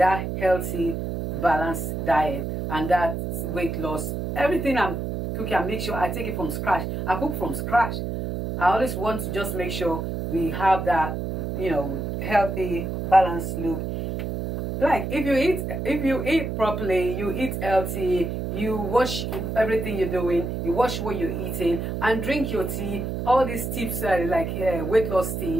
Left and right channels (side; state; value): right; noise; hum, 4 dB below the sound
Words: healthy, balanced diet and that weight loss. Everything I'm cooking, I make sure I take it from scratch. I cook from scratch. I always want to just make sure we have that, healthy, balanced look. Like if you eat properly, you eat healthy, you watch everything you're doing, you watch what you're eating, and drink your tea. All these tips like weight loss